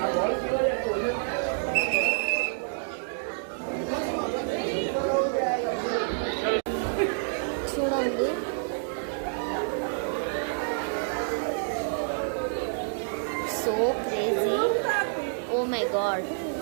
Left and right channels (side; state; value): left; silent; digital silence